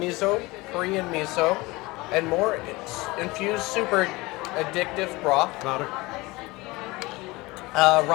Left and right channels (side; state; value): right; quieter; 22.2 dB